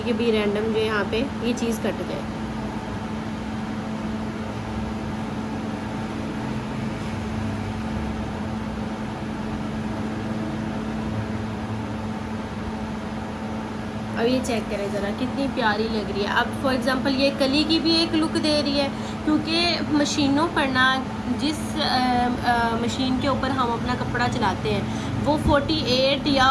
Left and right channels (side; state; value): both; identical; correlation 1.00